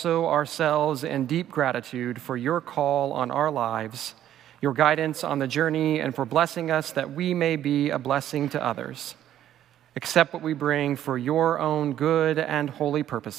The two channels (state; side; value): quieter; left; 11.5 dB